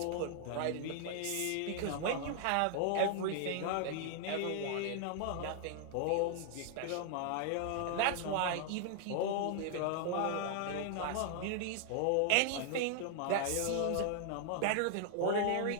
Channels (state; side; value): different; both; correlation 0.00